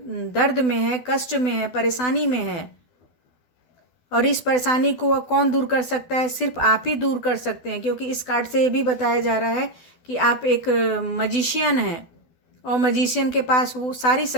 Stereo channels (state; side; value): late; right; 12 ms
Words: दर्द में है, कष्ट में है, परेशानी में है। और इस परेशानी को कौन दूर कर सकता है? सिर्फ आप ही दूर कर सकते हैं, क्योंकि इस कार्ड से ये भी बताया जा रहा है कि आप एक मजिशियन हैं, और मजिशियन के पास वो सारी